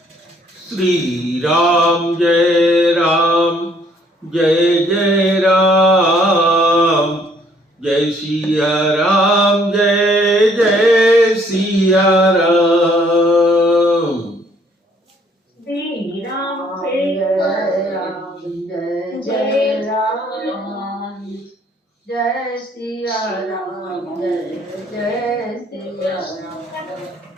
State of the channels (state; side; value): normal; both; correlation 0.64